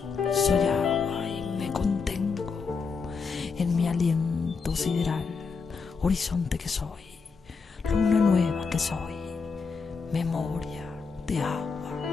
soy agua y me contengo en mi aliento sideral, horizonte que soy, luna nueva que soy, memoria de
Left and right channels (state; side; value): quieter; right; 5.1 dB